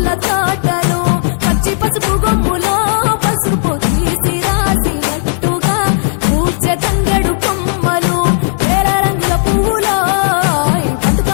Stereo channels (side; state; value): right; silent; digital silence